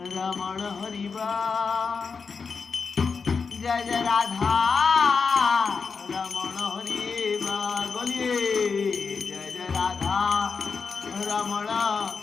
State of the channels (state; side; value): quieter; right; 5.2 dB